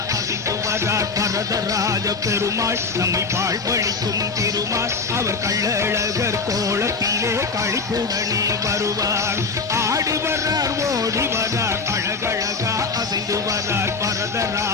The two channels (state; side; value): quieter; right; 4.4 dB